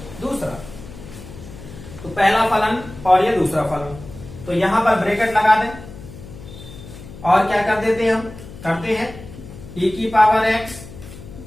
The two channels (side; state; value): left; noise; hum, 15 dB below the sound